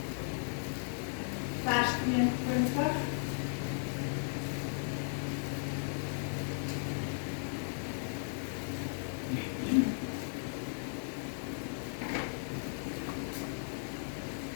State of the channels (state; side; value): silent; right; digital silence